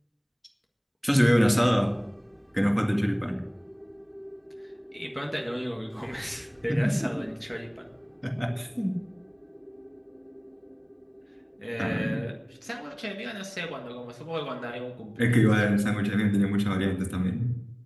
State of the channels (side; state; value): both; identical; correlation 1.00